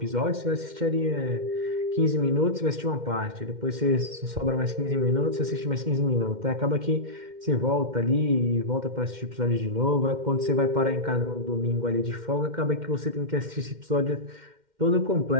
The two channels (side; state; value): left; late; 2.1 ms